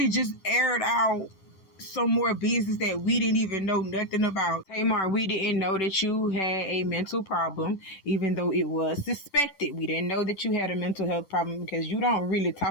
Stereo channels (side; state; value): right; late; 10 ms